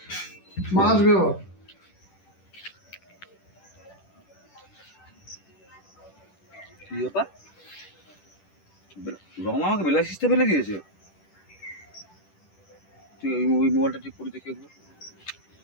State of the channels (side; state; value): right; late; 10 ms